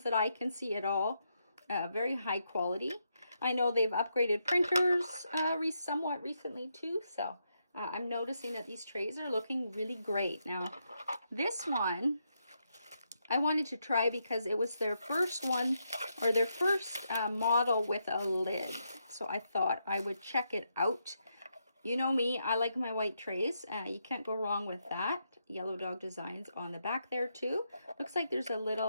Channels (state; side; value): inverted; both; correlation -0.81